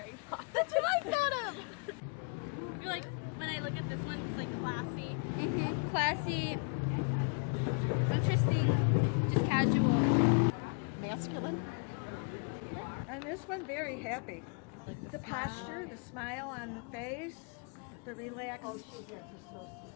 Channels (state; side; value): quieter; right; 38.4 dB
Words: Poppins. that's what I thought of! I feel like when I look at this one, it's like classy. Mm-hmm. Classy, interesting, just casual. Masculine. And this one, very happy. The posture, the smile on the face, the relaxed.